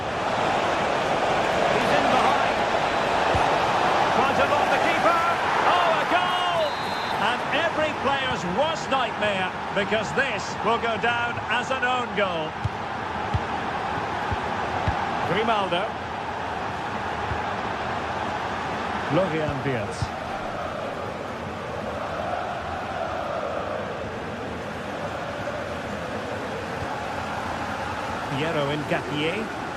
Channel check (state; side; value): identical; both; correlation 1.00